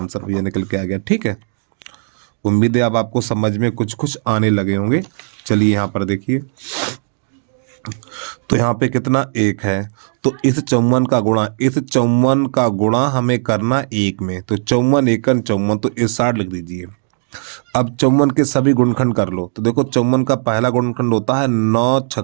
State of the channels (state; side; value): silent; left; digital silence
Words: ये निकल के आ गया। ठीक है, उम्मीद है अब आपको समझ में कुछ कुछ आने लगे होंगे। चलिए यहाँ पर देखिए, तो यहाँ पे कितना 1 है, तो इस 54 का गुणा हमें करना 1 में, तो 54 × 1 = 54, तो इस 60 लिख दीजिए। अब 54 के सभी गुणनखंड कर लो, तो देखो 54 का पहला गुणनखंड होता है 9 ×